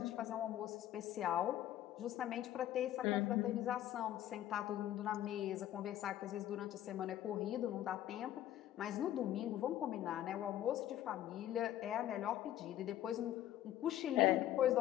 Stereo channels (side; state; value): right; quieter; 12.7 dB